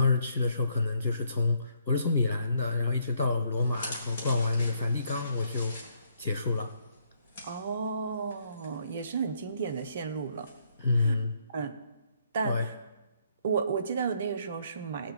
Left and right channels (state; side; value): inverted; both; correlation -0.71